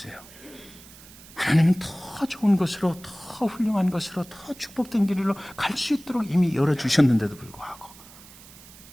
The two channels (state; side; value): noise; right; hiss, 20 dB below the sound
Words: 하나님은 더 좋은 것으로, 더 훌륭한 것으로, 더 축복된 길로 갈 수 있도록 이미 열어주셨는데도 불구하고